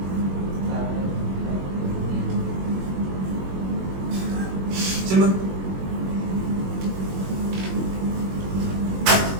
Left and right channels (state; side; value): late; left; 21 ms